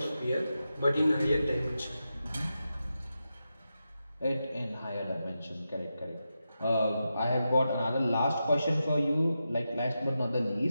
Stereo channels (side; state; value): both; inverted; correlation -0.89